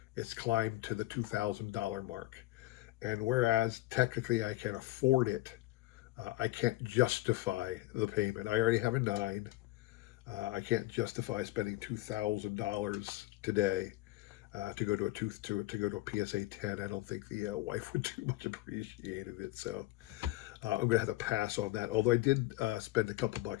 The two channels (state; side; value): quieter; right; 17.6 dB